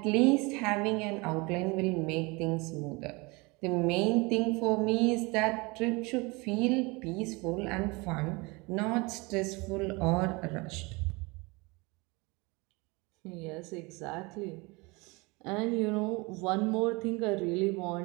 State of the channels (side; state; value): left; quieter; 26.3 dB